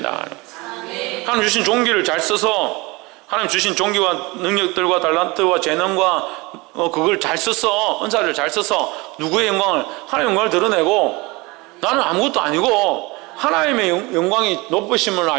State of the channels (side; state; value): left; quieter; 24.4 dB